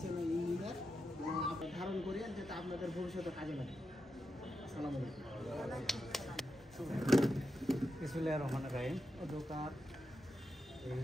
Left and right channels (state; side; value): normal; both; correlation 0.87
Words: ইঞ্জিনিয়ার ধারণ করিয়ে যাতে আপনাদের ভবিষ্যতে কাজে লাগে। আসসালামু আলাইকুম। বিসমিল্লাহির রহমানির রহিম। দোকান